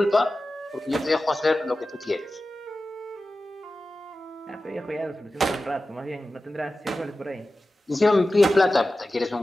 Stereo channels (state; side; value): normal; both; correlation 0.94